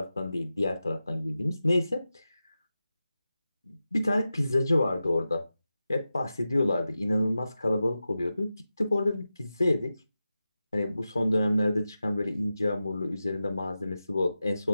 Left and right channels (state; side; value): inverted; both; correlation -0.92